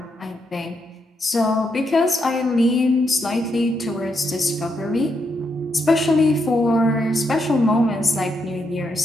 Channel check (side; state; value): both; normal; correlation 0.80